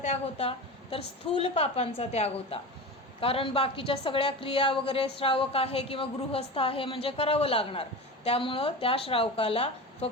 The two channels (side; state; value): both; normal; correlation 0.28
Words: होता, तर स्थूल पापांचा त्याग होता. कारण बाकीच्या सगळ्या क्रिया वगैरे श्रावक आहे किंवा गृहस्थ आहे म्हणजे करावं लागणार. त्यामुळं त्या श्रावकाला